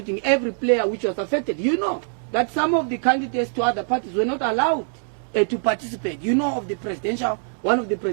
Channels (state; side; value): silent; left; digital silence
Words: every player which was affected. You know that some of the candidates to other parties were not allowed to participate. You know of the presidential, one of the